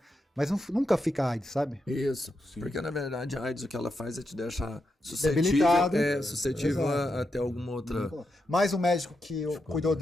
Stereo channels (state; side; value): normal; both; correlation 0.85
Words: Mas nunca fica AIDS, sabe? Isso. Sim. Porque na verdade a AIDS o que ela faz é te deixar Debilitado. suscetível a ter alguma outra. Mas o médico que cuidou